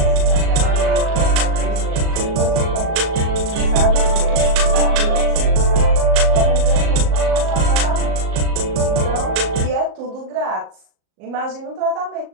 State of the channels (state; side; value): late; left; 38 ms